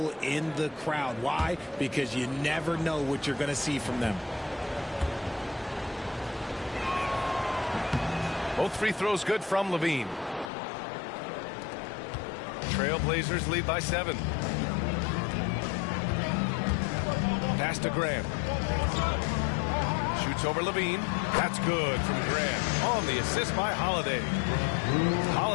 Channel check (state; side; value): drops out; right; at 10.5 s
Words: in the crowd. Why? Because you never know what you're going to see from them. Both free throws good from Levine. Trailblazers lead by 7. Pass to Grant. Shoots over Levine. That's good from Grant. On the assist by Holiday.